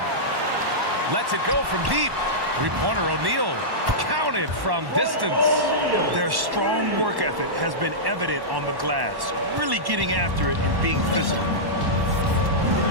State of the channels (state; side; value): late; left; 1.1 ms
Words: Lets it go from deep. Three-pointer O'Neal. Counted from distance. Their strong work ethic has been evident on the glass. Really getting after it and being physical.